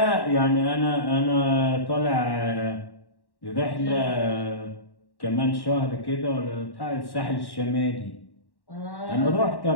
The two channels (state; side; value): late; right; 1.1 ms